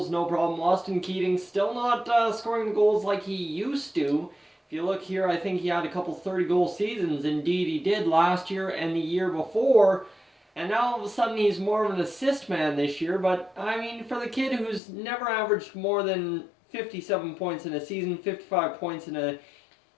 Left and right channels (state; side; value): drops out; right; at 14.8 s